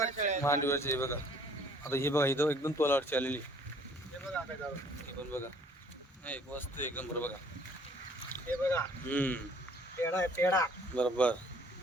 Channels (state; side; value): normal; both; correlation 0.57